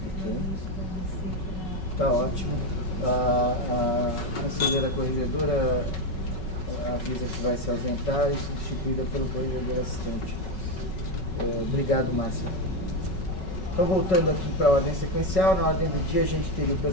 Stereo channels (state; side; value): late; right; 5.4 ms